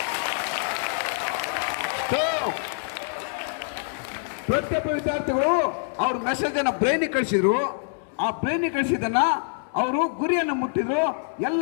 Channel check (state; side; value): silent; right; 61 dB below the other